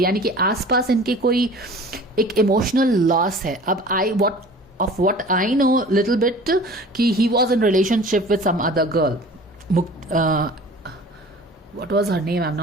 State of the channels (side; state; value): both; normal; correlation 0.44